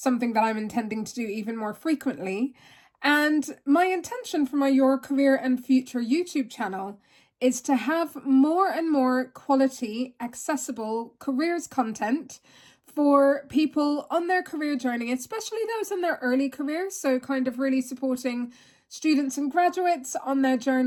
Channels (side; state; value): both; identical; correlation 1.00